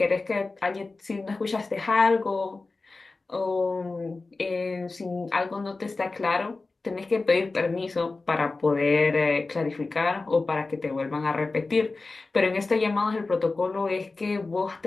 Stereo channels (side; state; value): right; quieter; 3.6 dB